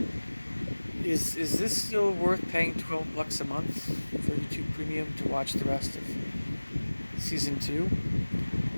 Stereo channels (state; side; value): inverted; both; correlation -1.00